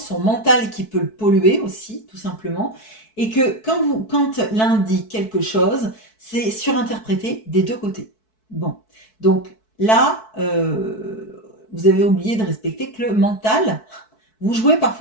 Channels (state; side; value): late; right; 4.6 ms